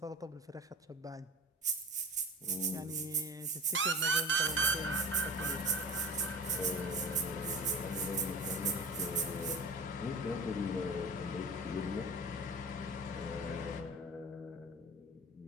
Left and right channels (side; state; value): both; normal; correlation 0.36